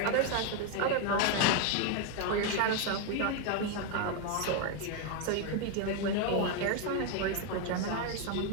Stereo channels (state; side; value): different; both; correlation 0.01